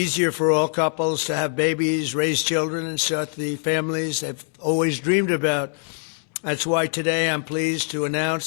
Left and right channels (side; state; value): right; silent; 57 dB below the other